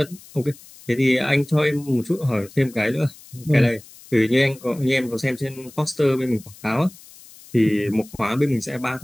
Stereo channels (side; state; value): left; noise; hiss, 21 dB below the sound